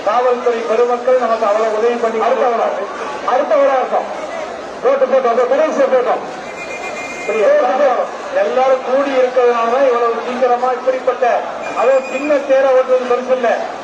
காவல்துறை பெருமக்கள் நமக்கு அவ்வளவு உதவி பண்ணி அடுத்த விழாக்கம் ரோட்டு போட்டோம், கடைசியை போட்டோம். எல்லாரும் கூடி இருக்கிறதுனால இவ்வளவு சீக்கிரமா இப்படிப்பட்ட அதுவும் சின்ன தேரை ஓட்டுறது பெருசு இல்ல,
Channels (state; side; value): identical; both; correlation 1.00